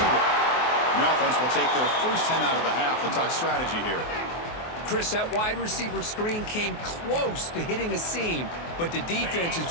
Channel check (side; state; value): right; late; 24 ms